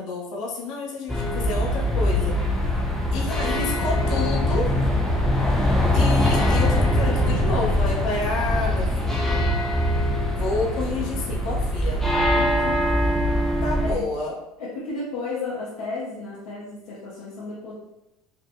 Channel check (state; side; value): normal; both; correlation 0.65